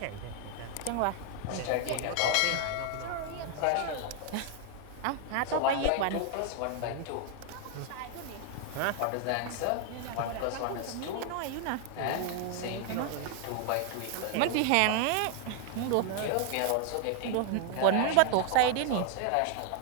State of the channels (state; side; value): different; both; correlation 0.00